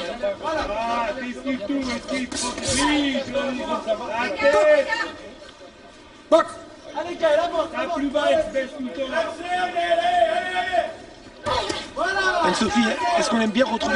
Ah, esquive tout, esquive. Oui, joli. La tête. Box. Allez, calme, avance. La plus bas, elle se baisse tout le temps. Voilà. Anne-Sophie, est-ce qu'on aime bien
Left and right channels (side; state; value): both; identical; correlation 1.00